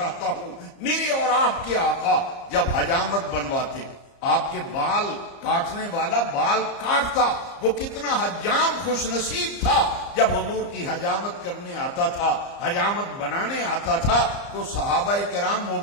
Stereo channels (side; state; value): right; late; 34 ms